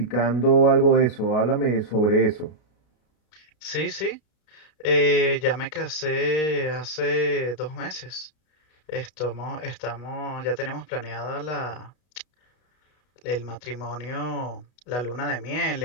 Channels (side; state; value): right; late; 33 ms